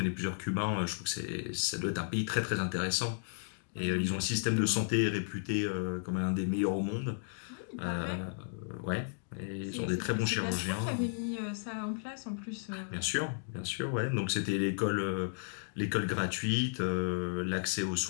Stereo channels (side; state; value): right; silent; digital silence